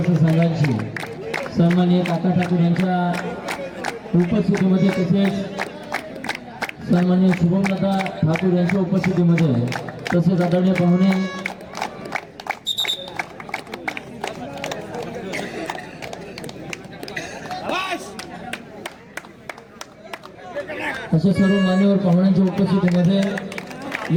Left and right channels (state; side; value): identical; both; correlation 1.00